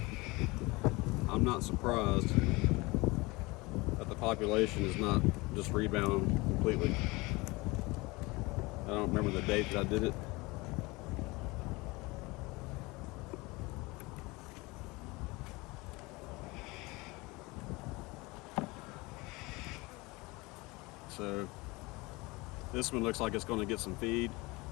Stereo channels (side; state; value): right; quieter; 23.7 dB